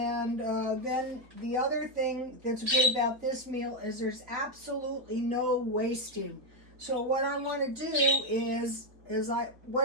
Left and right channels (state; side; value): late; left; 4.3 ms